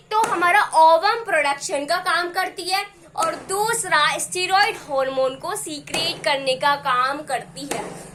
तो हमारा ओवम प्रोडक्शन का काम करती है और दूसरा स्टेरॉइड हार्मोन को सीक्रेट करने का काम करती है।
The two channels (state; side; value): identical; both; correlation 1.00